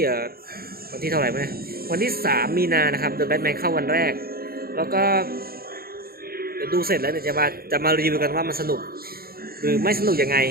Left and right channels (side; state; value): left; late; 0.44 ms